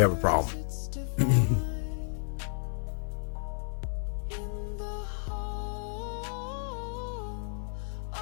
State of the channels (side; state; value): right; silent; digital silence